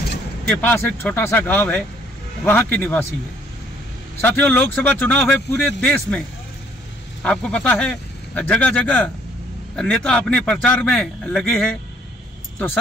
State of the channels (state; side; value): normal; both; correlation 0.63